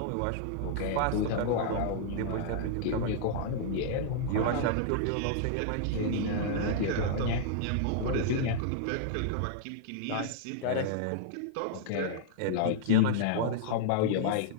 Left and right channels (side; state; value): both; different; correlation -0.01